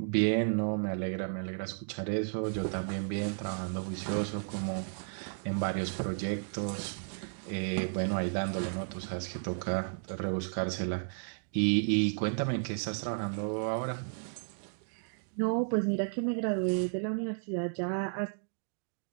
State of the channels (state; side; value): silent; left; digital silence